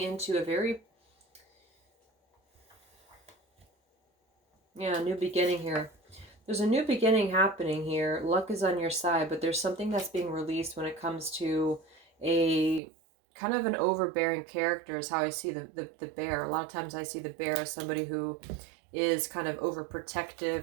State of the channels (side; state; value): left; drops out; at 12.8 s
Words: a very, new beginning here. There's a new beginning happening here. Luck is on your side, but there's something that's being released when it comes to a kind of an overbearing character is how I see the bear. A lot of times I see the bear as somebody who is kind of